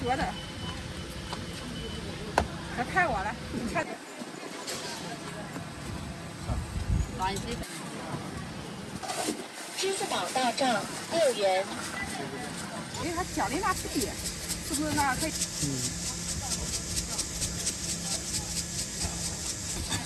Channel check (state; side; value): identical; both; correlation 1.00